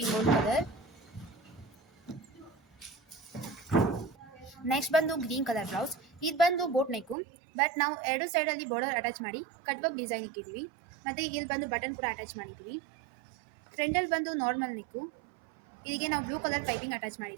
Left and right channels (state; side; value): drops out; left; at 7.2 s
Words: ಗೋಲ್ಡ್ ಕಲರ್. ನೆಕ್ಸ್ಟ್ ಬಂದು ಗ್ರೀನ್ ಕಲರ್ ಬ್ಲೌಸ್, ಇದು ಬಂದು ಬೋಟ್ ನೆಕ್ಕು, ಬಟ್ ನಾವು ಎರಡು ಸೈಡಲ್ಲಿ ಬಾರ್ಡರ್ ಅಟ್ಯಾಚ್ ಮಾಡಿ ಕಟ್ ವರ್ಕ್ ಡಿಸೈನ್ ಇಕ್ಕಿದ್ದೀವಿ. ಮತ್ತು ಇಲ್ಲಿ ಬಂದು ಬಟನ್ ಕೂಡ ಅಟ್ಯಾಚ್ ಮಾಡಿದ್ದೀವಿ. ಫ್ರಂಟಲ್ಲಿ ಬಂದು ನಾರ್ಮಲ್ ನೆಕ್ಕು, ಇಲ್ಲಿಗೆ ನಾವು ಬ್ಲೂ ಕಲರ್ ಪೈಪಿಂಗ್ ಅಟ್ಯಾಚ್